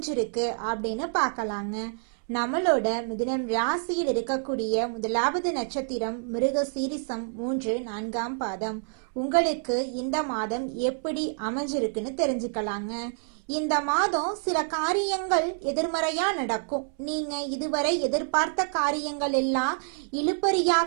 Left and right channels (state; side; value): silent; left; 60 dB below the other